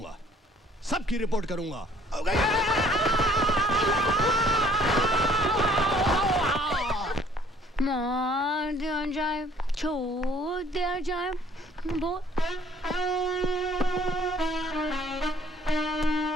सबकी रिपोर्ट करूंगा। मार दिया जाए, छोड़ दिया जाए, बोल।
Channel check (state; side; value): normal; both; correlation 0.58